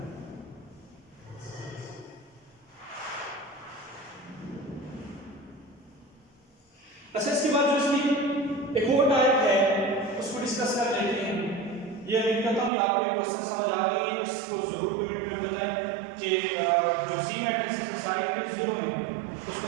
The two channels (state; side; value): drops out; left; at 12.7 s